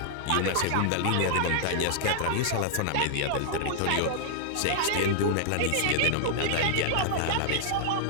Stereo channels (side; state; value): both; different; correlation -0.01